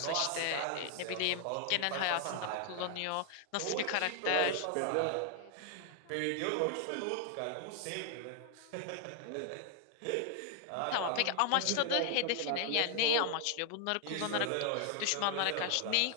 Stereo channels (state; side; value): different; both; correlation 0.00